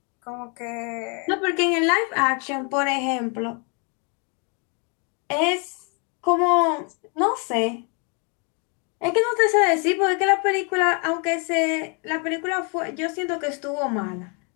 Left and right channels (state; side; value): quieter; right; 35.5 dB